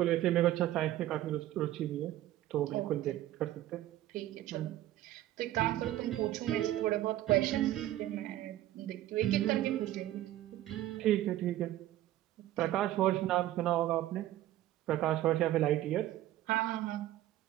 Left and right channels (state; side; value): quieter; left; 14.2 dB